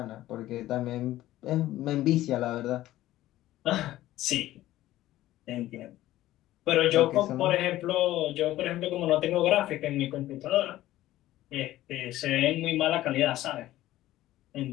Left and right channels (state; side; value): quieter; right; 15.1 dB